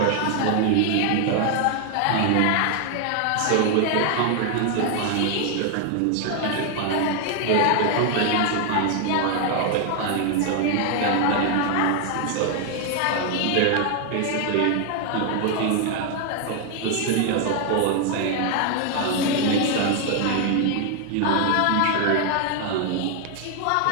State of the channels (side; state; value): both; different; correlation 0.00